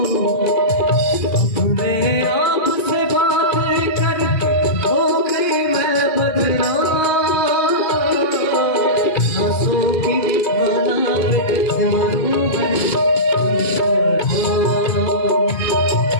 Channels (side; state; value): right; late; 2.5 ms